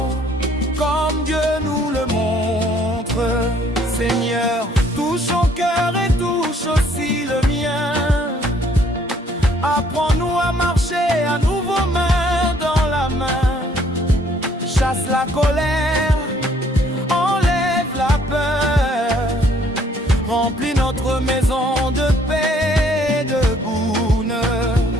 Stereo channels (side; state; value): both; normal; correlation 0.63